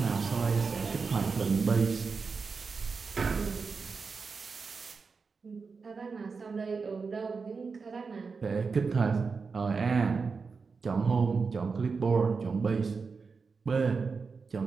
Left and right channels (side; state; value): left; quieter; 4.9 dB